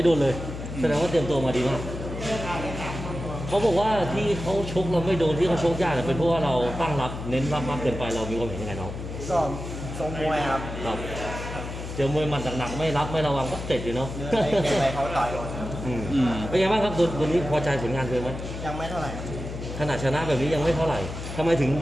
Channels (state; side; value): noise; left; hum, 8 dB below the sound